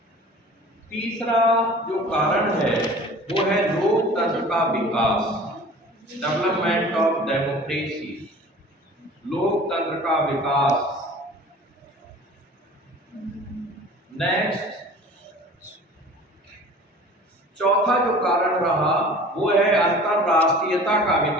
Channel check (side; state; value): both; normal; correlation 0.44